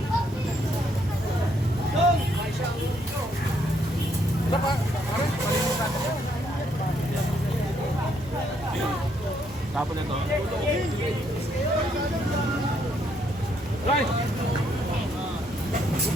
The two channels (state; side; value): normal; both; correlation 0.72